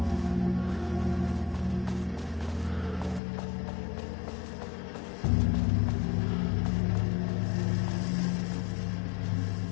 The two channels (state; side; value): drops out; right; at 3.2 s